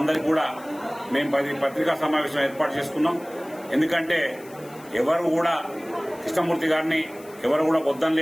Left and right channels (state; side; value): noise; left; hiss, 23 dB below the sound